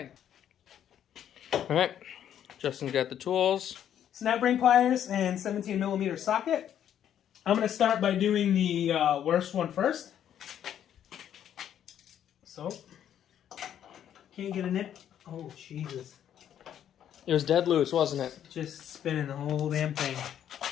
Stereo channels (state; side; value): quieter; right; 10.0 dB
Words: All right, Justin's got the tools. Snap ring pliers and 17mm socket. I'm gonna start by doing the worst one first. So, can't get a nip. Oh, Jesus. It was dead loose, wasn't it? Just spinning the whole damn thing.